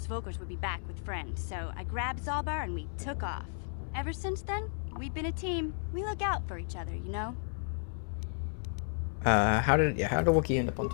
Vulkars would be back with friends, so I grabbed Zalbar and we took off. Ever since then, we've been a team. We look out for each other, you know? How did Wookiee end up on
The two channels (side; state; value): right; silent; 56 dB below the other